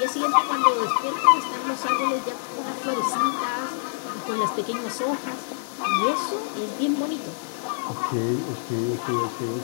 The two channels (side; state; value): right; silent; digital silence